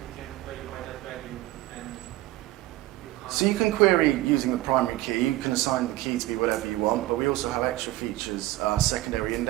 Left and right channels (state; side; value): quieter; left; 17.2 dB